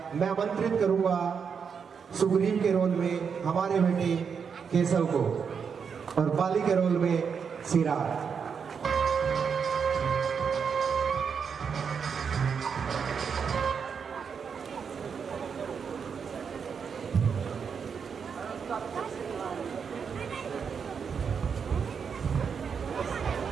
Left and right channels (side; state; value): left; quieter; 6.5 dB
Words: मैं आमंत्रित करूंगा सुग्रीव के रोल में हमारे बेटे केशव को और बाली के रोल में सिराज।